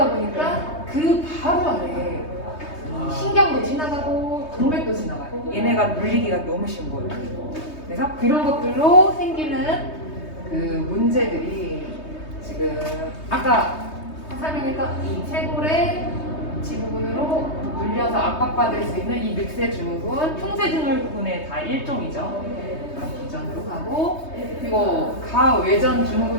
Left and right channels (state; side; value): late; right; 3.2 ms